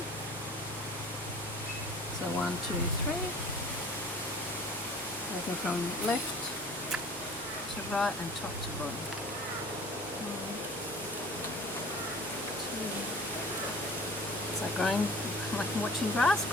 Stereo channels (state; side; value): normal; both; correlation 0.46